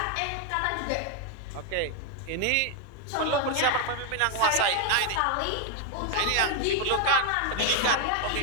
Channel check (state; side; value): different; both; correlation 0.01